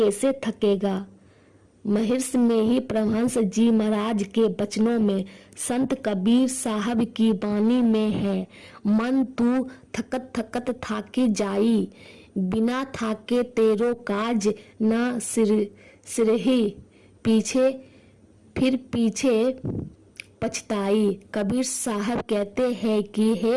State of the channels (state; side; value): identical; both; correlation 1.00